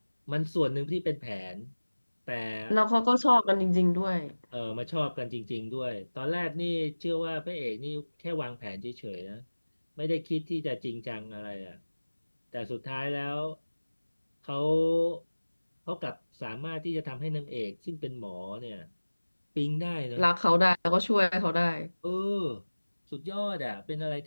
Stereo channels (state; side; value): inverted; both; correlation -1.00